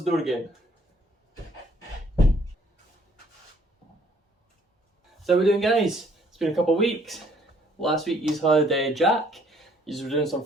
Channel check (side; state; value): both; normal; correlation 0.62